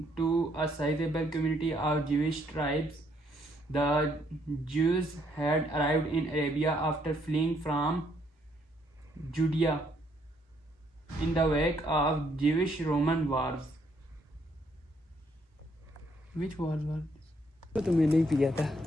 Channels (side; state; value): both; normal; correlation 0.70